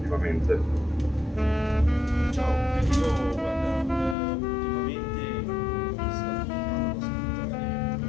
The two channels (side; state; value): right; drops out; at 4.2 s